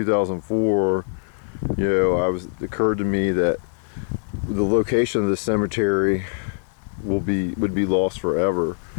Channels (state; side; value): silent; right; digital silence